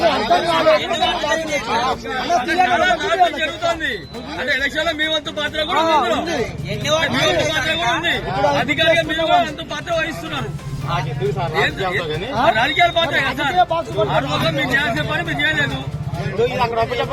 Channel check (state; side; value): identical; both; correlation 1.00